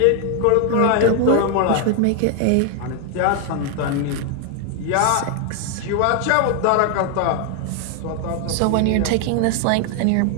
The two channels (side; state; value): both; different; correlation 0.00